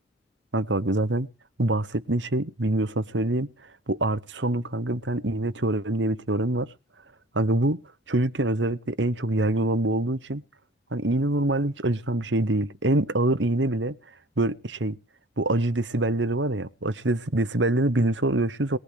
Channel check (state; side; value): normal; both; correlation 0.47